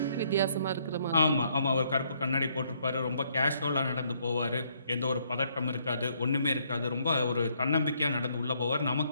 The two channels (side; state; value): both; inverted; correlation -0.70